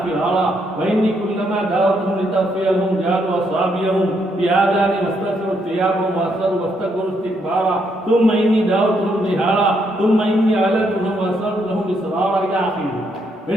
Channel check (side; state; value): both; normal; correlation 0.75